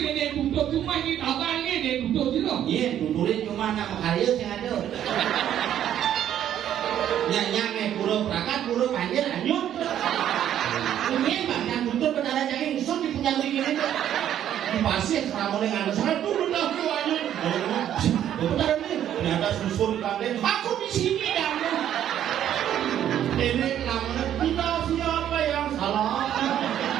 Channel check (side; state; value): left; quieter; 10.7 dB